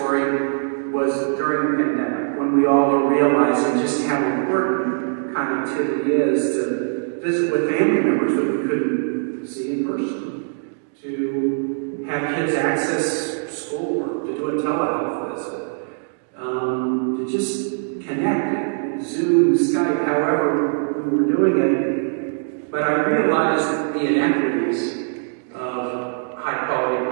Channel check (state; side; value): silent; left; digital silence